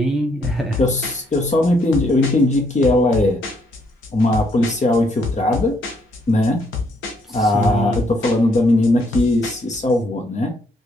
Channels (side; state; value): both; normal; correlation 0.71